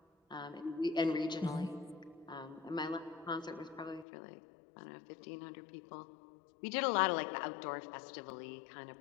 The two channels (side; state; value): right; drops out; at 4.0 s